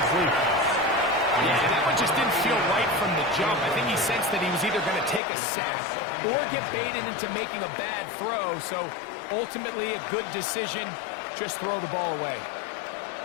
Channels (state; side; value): drops out; right; at 5.2 s